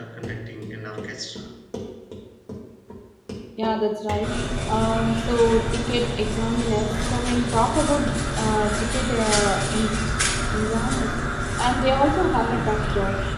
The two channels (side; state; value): both; identical; correlation 1.00